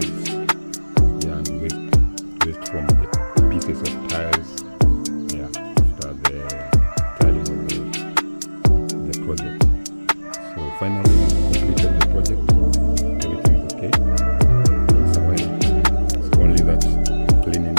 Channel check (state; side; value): inverted; both; correlation -1.00